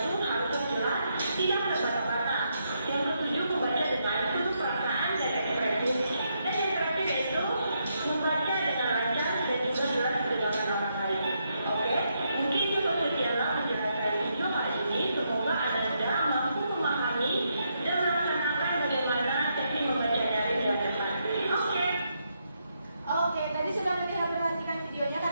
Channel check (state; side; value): inverted; both; correlation -0.79